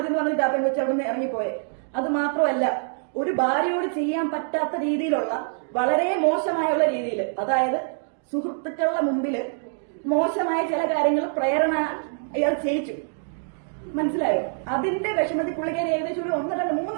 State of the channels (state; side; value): silent; left; digital silence